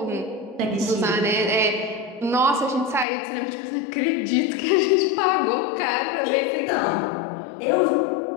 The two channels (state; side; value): drops out; right; at 3.1 s